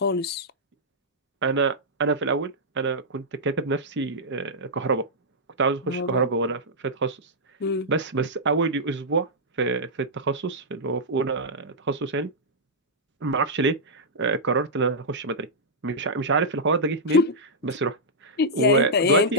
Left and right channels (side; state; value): both; normal; correlation -0.10